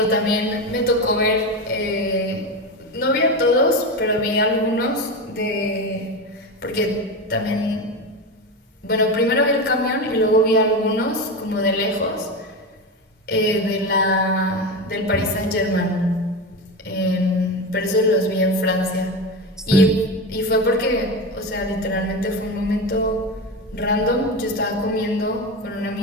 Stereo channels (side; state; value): both; normal; correlation 0.20